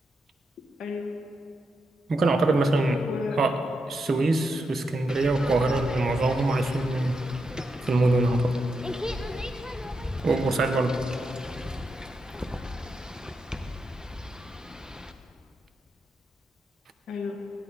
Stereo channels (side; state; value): both; normal; correlation 0.84